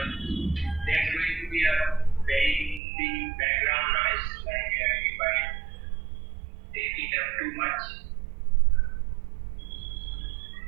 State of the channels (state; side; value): drops out; left; at 2.8 s